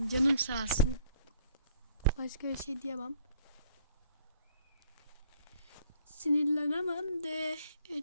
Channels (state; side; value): inverted; both; correlation -0.59